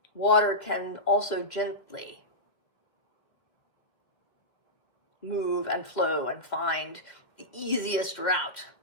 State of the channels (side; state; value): right; late; 2.1 ms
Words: water can also gently move and flow and find the easiest route